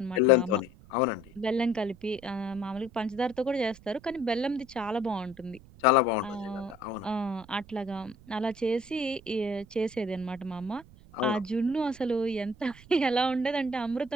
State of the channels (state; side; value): noise; right; rumble, 22 dB below the sound